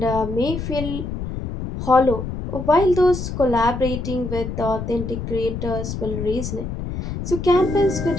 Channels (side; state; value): left; noise; rumble, 6 dB below the sound